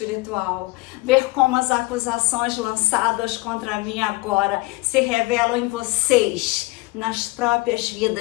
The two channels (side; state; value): right; quieter; 23.2 dB